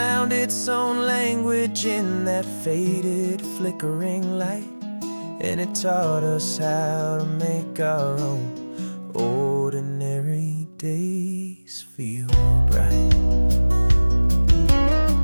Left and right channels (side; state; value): both; inverted; correlation -1.00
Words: its own language in that faded, flickering light, and it taught us how to make our own ordinary days feel bright.